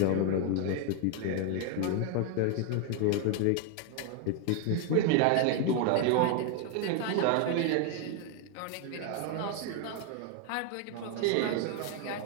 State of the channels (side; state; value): both; different; correlation 0.01